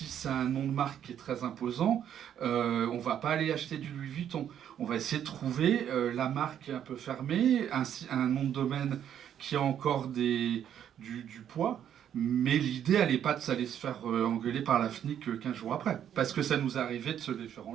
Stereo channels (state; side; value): quieter; left; 9.7 dB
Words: c'est un nom de marque qui est très imposant, on va pas aller acheter du Louis Vuitton. On va essayer de trouver la marque un peu fermée, un nom de domaine qui a encore du poids. Mais l'idée, elle n'est pas de s'aller se faire engueuler par la FNIC 15 jours après. Parce que ça nous est arrivé de se les faire